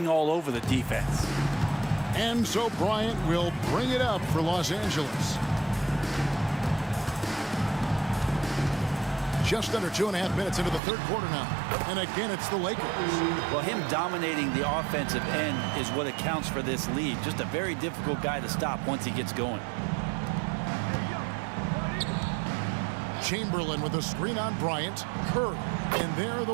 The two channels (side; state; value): left; drops out; at 10.8 s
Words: all over the defense. And so Bryant will bring it up for Los Angeles. Just under 2.5 minutes into the third quarter now. And again, it's the Lakers. Well, him dominating the offensive end is what accounts for this lead. Just a very difficult guy to stop once he gets going. Chamberlain with a screen on Bryant. Curry. And there are the